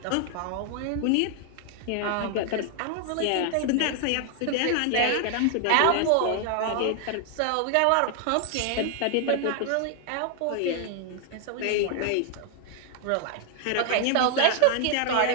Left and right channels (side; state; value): both; different; correlation 0.00